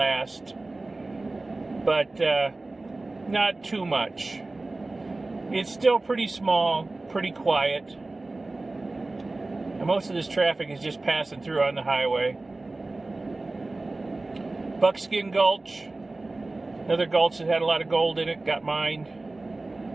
but not too much. It's still pretty small, pretty quiet. And most of this traffic is just passing through on the highway. Buckskin Gulch. Another gulch that had a lot of gold in it, got mined.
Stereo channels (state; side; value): quieter; left; 3.1 dB